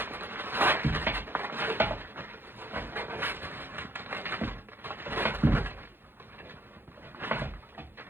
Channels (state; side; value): late; left; 0.10 ms